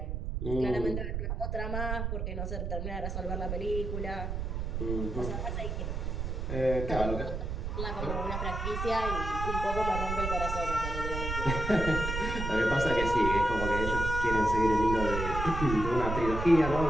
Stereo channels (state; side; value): noise; right; rumble, 3 dB below the sound